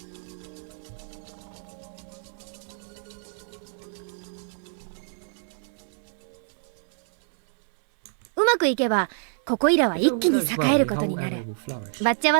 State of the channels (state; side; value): silent; left; digital silence